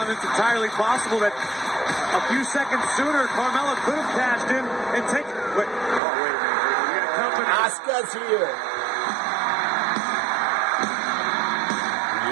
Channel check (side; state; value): left; drops out; at 6.0 s